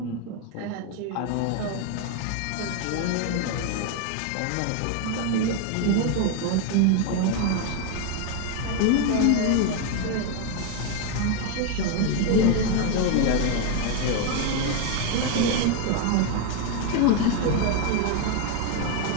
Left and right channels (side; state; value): both; different; correlation 0.01